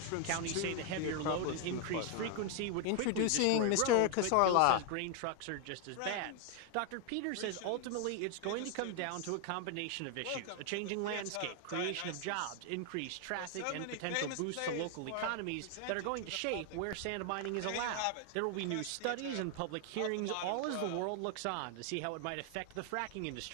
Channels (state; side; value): different; both; correlation 0.00